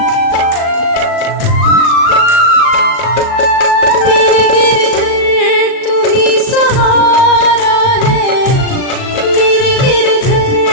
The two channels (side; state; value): right; late; 38 ms